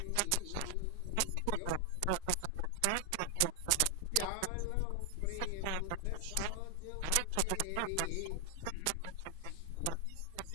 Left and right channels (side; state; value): both; different; correlation 0.00